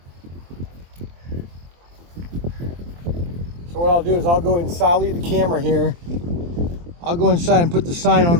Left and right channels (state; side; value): late; left; 23 ms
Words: So what I'll do is I'll go inside, I'll leave the camera here. I'll go inside and put the sign on